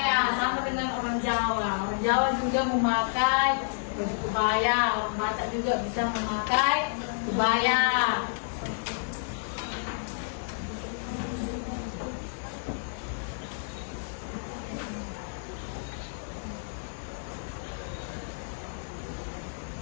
sama dengan orang Jawa. Orang Jawa juga memakai baju kebaya. Orang Batak juga bisa memakai kebaya.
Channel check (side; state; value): right; silent; digital silence